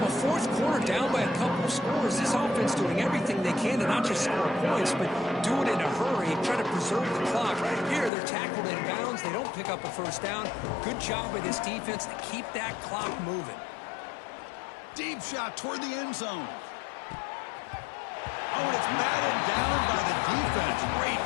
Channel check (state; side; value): drops out; right; at 8.1 s